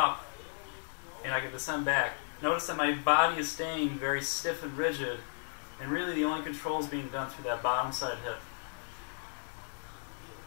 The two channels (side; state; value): right; silent; digital silence